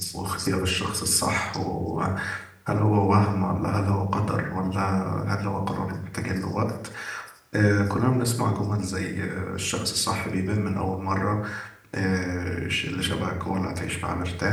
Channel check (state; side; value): identical; both; correlation 1.00